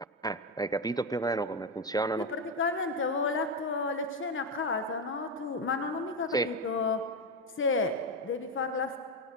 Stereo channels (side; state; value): both; normal; correlation 0.11